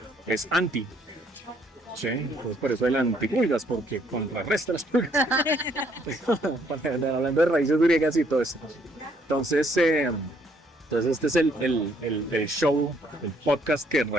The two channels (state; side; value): normal; both; correlation 0.67